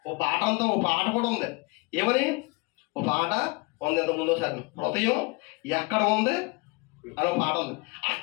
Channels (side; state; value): right; quieter; 26.6 dB